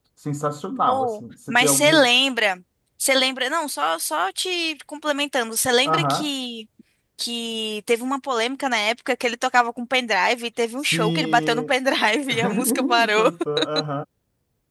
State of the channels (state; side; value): identical; both; correlation 1.00